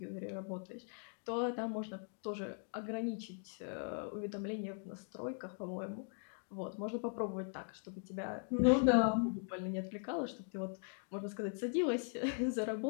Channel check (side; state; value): right; silent; 51 dB below the other